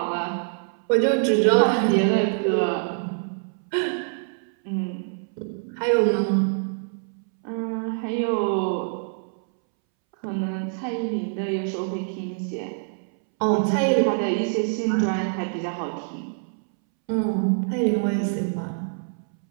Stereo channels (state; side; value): silent; left; 62 dB below the other